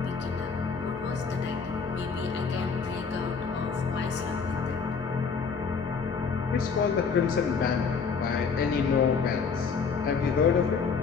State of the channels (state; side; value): quieter; right; 5.5 dB